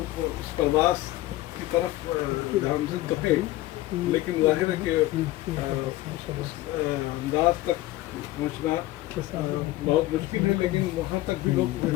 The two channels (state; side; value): quieter; right; 16.7 dB